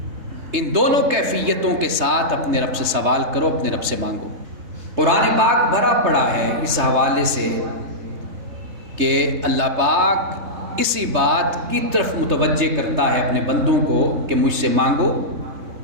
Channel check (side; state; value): left; late; 3.3 ms